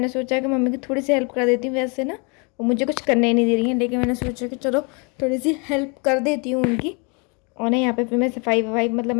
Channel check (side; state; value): right; quieter; 32.9 dB